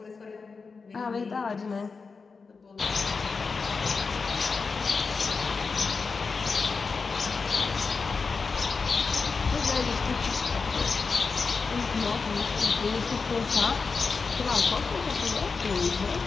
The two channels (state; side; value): quieter; right; 4.7 dB